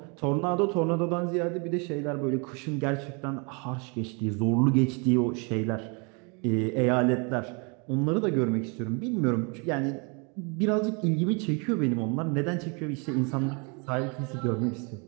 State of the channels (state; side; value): quieter; left; 33.4 dB